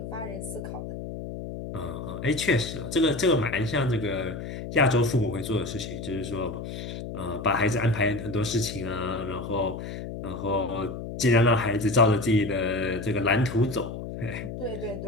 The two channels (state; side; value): noise; left; hum, 8 dB below the sound